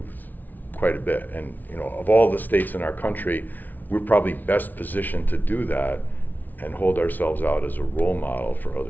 quite a bit. And of all the states in our country, we're probably best positioned to do that and hold ourselves out as a role model for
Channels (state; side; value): late; right; 0.082 ms